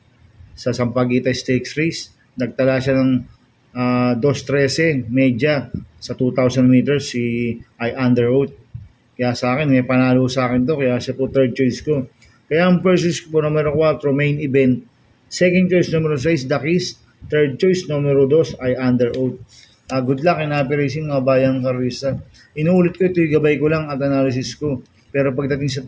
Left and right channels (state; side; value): identical; both; correlation 1.00